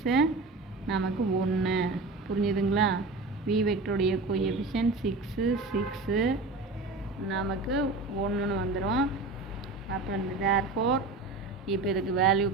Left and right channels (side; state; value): left; quieter; 3.4 dB